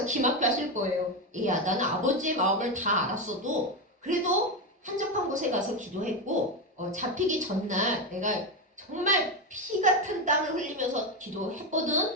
기막혀 하실 거예요. 야, 나는 아버지의 마음을 다 알았어도 그래도 한적한 곳에 가서 기도했고 잡히기 전날 내가 정말 피 같은 땀을 흘리면서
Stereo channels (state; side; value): normal; both; correlation 0.12